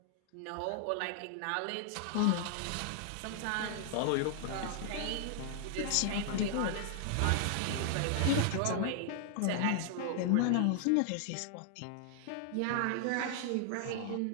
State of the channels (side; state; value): both; different; correlation -0.01